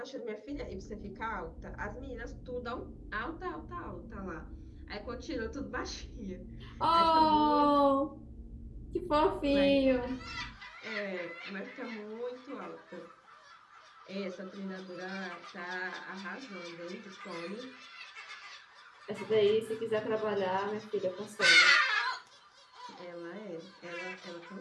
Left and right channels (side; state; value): both; identical; correlation 1.00